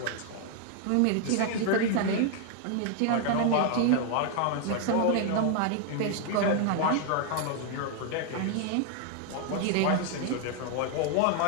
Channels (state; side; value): different; both; correlation 0.00